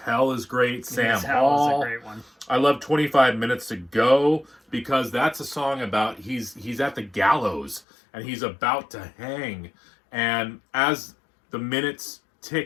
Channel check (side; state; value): right; drops out; at 7.8 s